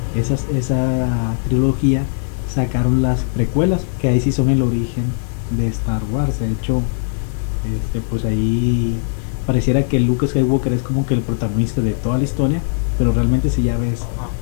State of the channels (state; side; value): silent; right; 67 dB below the other